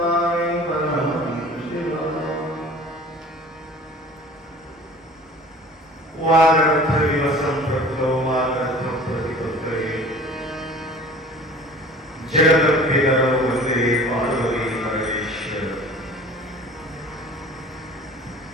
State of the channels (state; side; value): normal; both; correlation 0.45